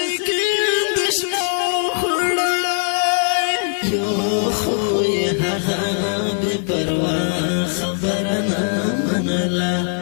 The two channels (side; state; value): right; silent; digital silence